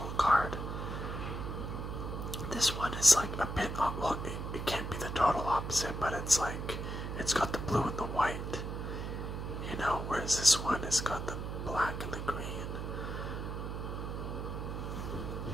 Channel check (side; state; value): right; noise; hum, 5 dB below the sound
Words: is like a bit, well, it can't be the total opposite, but it's like, it's got the blue and the white, you know, whereas this one has got the black and the green.